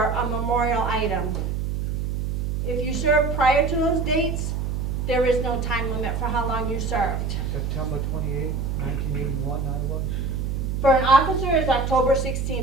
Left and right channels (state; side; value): noise; right; hum, 1 dB below the sound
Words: a memorial item. If you served prior to those dates, there is no time limit for how long you served. September 28th, 1981, I was. For an officer, it's October